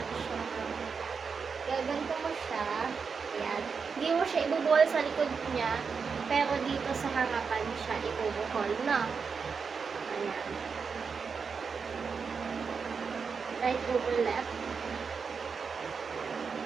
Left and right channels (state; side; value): quieter; left; 5.6 dB